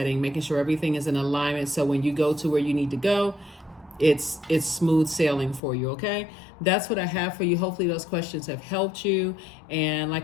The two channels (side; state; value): right; drops out; at 5.6 s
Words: making sure everything is in alignment. So when you go to where you need to go, it's smooth sailing for you, okay? That's what I have for you. Hopefully those questions have helped you. And